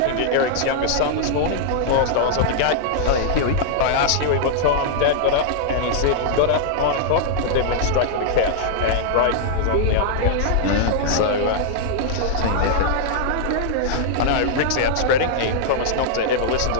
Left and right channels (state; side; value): different; both; correlation -0.01